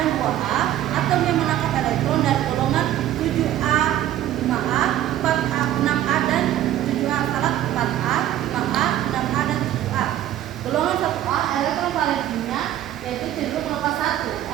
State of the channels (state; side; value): quieter; left; 12.5 dB